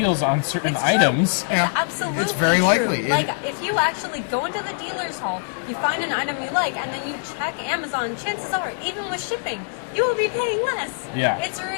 on certain It's true. items. Yeah. Absolutely. It's very true. likely. Like, if you actually go into the dealer's hall, you find an item you like, and then you check Amazon, chances are, even with shipping, you will be paying less. Yeah. It's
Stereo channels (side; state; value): right; silent; digital silence